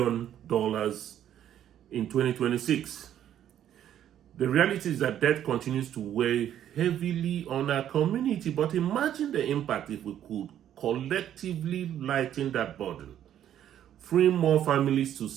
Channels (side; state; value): left; quieter; 10.7 dB